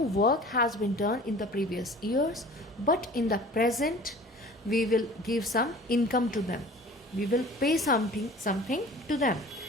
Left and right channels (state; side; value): normal; both; correlation 0.44